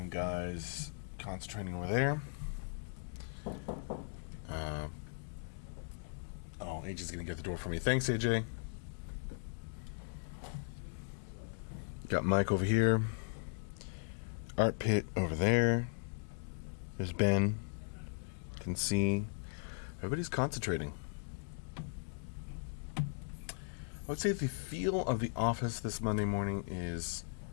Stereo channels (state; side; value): silent; right; digital silence